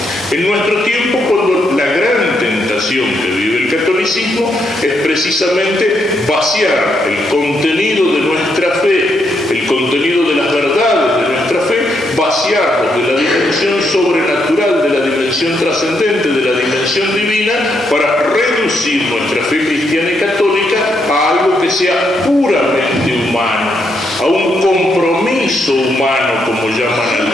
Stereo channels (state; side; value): normal; both; correlation 0.78